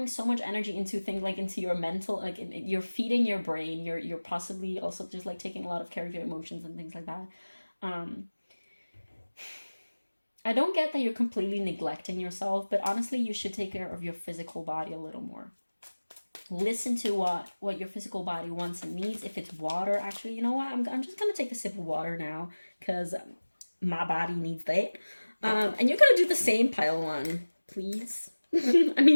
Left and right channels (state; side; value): inverted; both; correlation -1.00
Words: so much energy into things like into your mental, like you're feeding your brain. You're possibly also just like taking a lot of care of your emotions and things like that. Um, I don't get that you're completely neglecting yourself, but honestly, you should take care of your physical body a little more. Listen to what your physical body wants and needs. If it's water, actually, you know what? I'm just gonna take a sip of water now because my body needs that. And you're gonna do the same, pile one, please. I